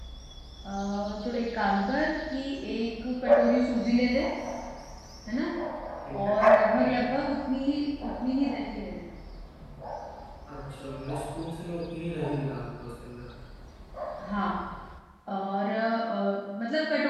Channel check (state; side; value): identical; both; correlation 1.00